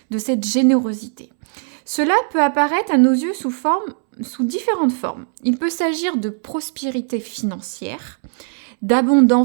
de cette générosité. Cela peut apparaître à nos yeux sous différentes formes. Il peut s'agir de prospérité financière,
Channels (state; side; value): silent; left; 66 dB below the other